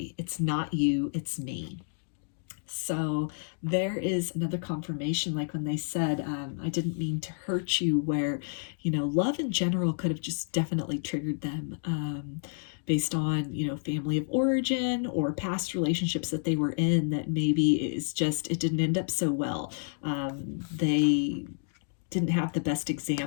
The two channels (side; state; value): right; silent; digital silence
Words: It's not you, it's me. So there is another confirmation, like when they said, I didn't mean to hurt you, where, love in general could have just definitely triggered them. based on, you know, family of origin or past relationships that they were in that maybe it didn't end up so well. They didn't have the best